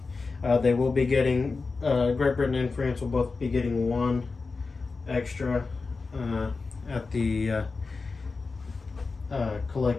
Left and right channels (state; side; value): quieter; right; 4.2 dB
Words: They will be getting, Great Britain and France will both be getting 1 extra at the